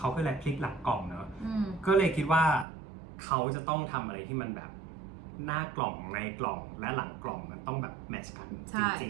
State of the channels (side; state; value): left; drops out; at 2.7 s